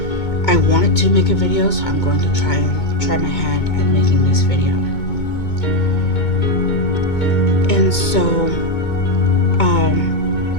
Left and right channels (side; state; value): right; late; 2.2 ms